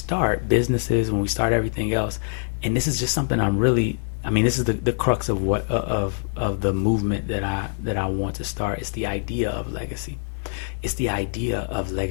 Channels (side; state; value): right; silent; digital silence